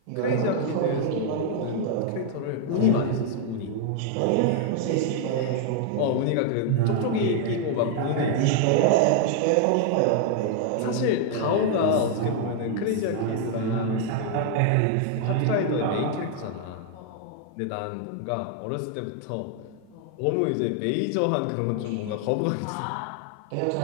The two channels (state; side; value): different; both; correlation 0.00